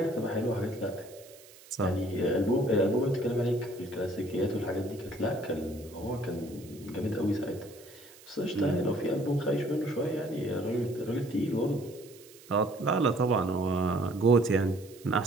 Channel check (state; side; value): noise; right; hiss, 22 dB below the sound